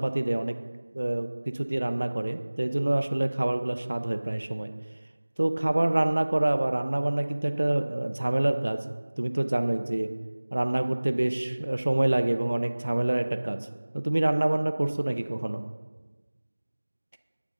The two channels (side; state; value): both; inverted; correlation -1.00